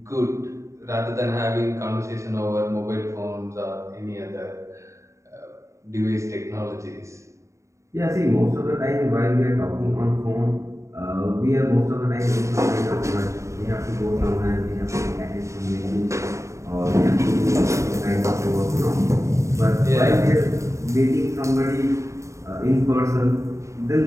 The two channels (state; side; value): late; left; 0.14 ms